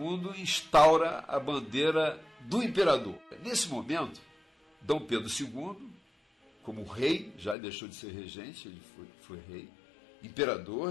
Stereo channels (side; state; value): right; drops out; at 7.6 s